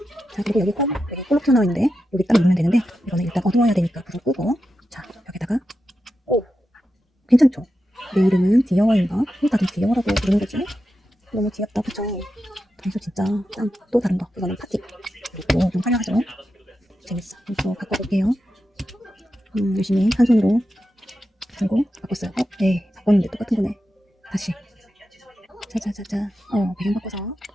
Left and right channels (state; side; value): normal; both; correlation 0.89